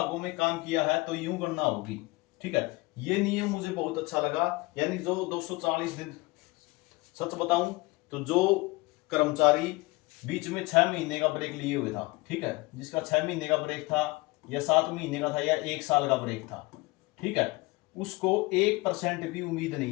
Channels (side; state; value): right; quieter; 23.5 dB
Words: में काम किया है तो यूं गणना होगी। ठीक है, ये नियम मुझे बहुत अच्छा लगा। यानी जो 240 दिन, सच बताऊं तो जो कर्मचारी बीच में 6 महीने का ब्रेक लिए हुए था, ठीक है, जिसका 6 महीने का ब्रेक था या 7 महीने का था या 1 साल का ब्रेक था, ठीक है, उसको 1% भी उम्मीद